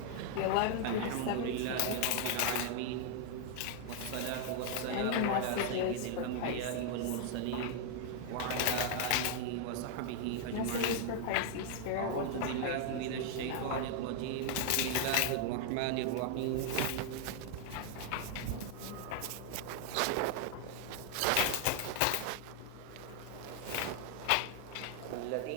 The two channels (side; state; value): both; different; correlation 0.00